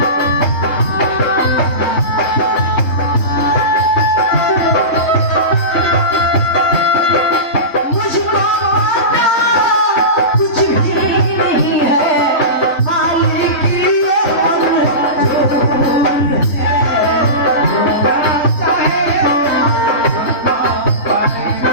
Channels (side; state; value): right; late; 3.1 ms